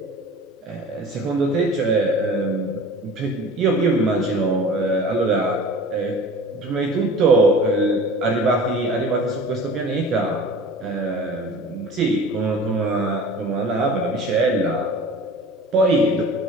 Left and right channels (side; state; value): both; normal; correlation 0.41